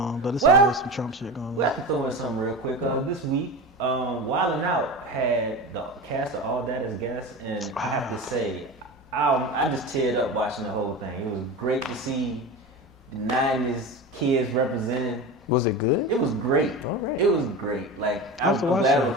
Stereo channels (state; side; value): normal; both; correlation 0.28